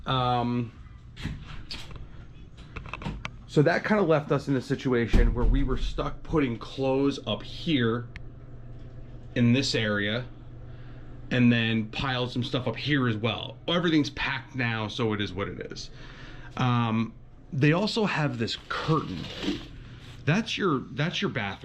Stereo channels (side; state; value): both; identical; correlation 1.00